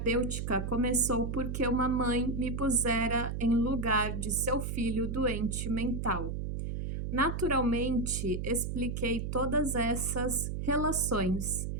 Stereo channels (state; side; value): noise; right; hum, 3 dB below the sound